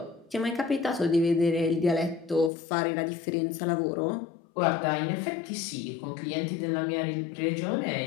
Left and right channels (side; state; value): right; drops out; at 2.5 s